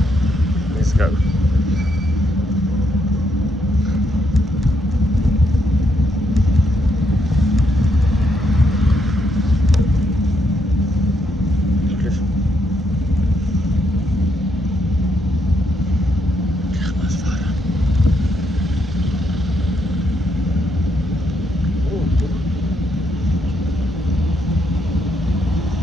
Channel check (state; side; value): normal; both; correlation 0.76